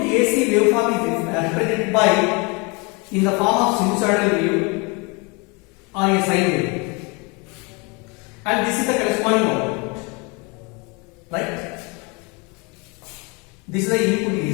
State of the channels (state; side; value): quieter; right; 29.7 dB